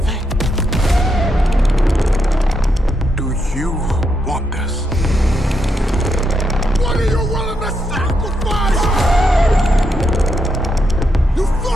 Do you want this? What are you willing to sacrifice? You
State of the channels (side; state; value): both; normal; correlation 0.81